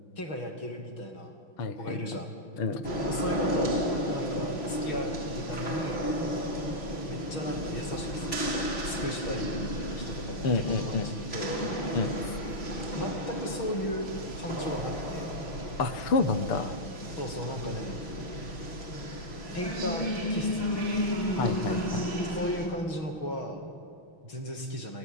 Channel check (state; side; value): late; right; 6.2 ms